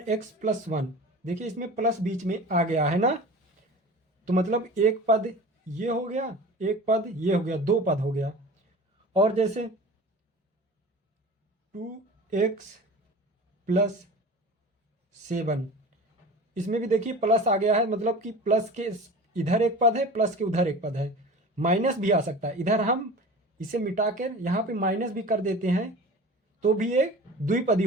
देखिए इसमें प्लस बीच में आ गया है ना, तो मतलब एक पद ये हो गया, एक पद ये हो गया, 2 पद हो गया। और जैसे 2x+7, इसमें भी देखिए प्लस आ गया है, मतलब कि प्लस के इधर एक पद है, प्लस के उधर एक पद है। माइनस भी आ सकता है, इधर हम इसे मिटा कर यहाँ पे माइनस भी कर देते हैं तो भी एक द्विपदी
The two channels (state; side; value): normal; both; correlation 0.37